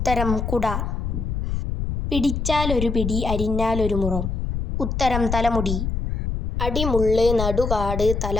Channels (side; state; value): left; noise; rumble, 2 dB below the sound